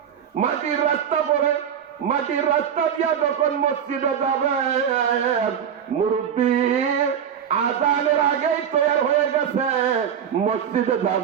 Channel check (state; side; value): quieter; left; 8.4 dB